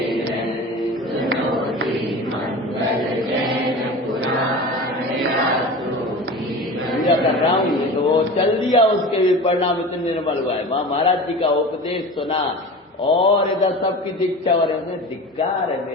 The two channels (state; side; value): normal; both; correlation 0.34